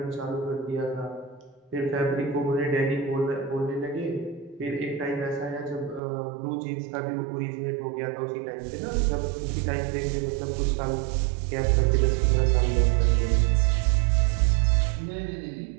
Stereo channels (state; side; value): drops out; left; at 6.0 s